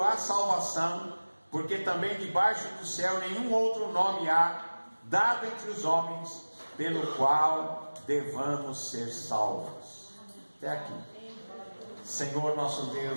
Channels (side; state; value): both; inverted; correlation -1.00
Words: há salvação, porque também debaixo do céu nenhum outro nome há, dado entre os homens, pelo qual devamos ser salvos. Até aqui. Senhor nosso